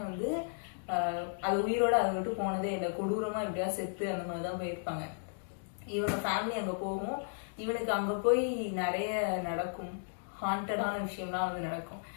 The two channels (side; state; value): right; silent; digital silence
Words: வந்து அது உயிரோட அதை விட்டு போனதே இல்லை. கொடூரமா எப்படியா செத்து அந்த மாதிரிதான் போயிருப்பாங்க. இவங்க ஃபேமிலி அங்க போகும். இவனுக்கு அங்க போய் நிறைய நடக்கும், ஹாண்டடான விஷயம்லாம் வந்து நடக்கும்.